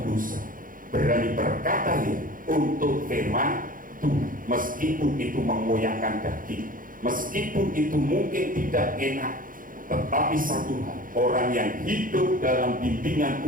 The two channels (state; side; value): late; left; 0.40 ms